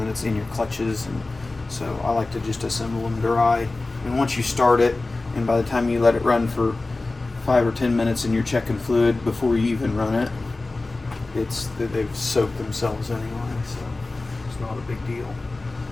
it's in your clutches, and so I like to just assemble them dry. And once you start it, and by the time you let it run for 5 or 10 minutes and you're checking fluid before you even run it, it's that they've soaked themselves anyway, so it's not a big deal.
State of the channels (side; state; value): right; quieter; 3.2 dB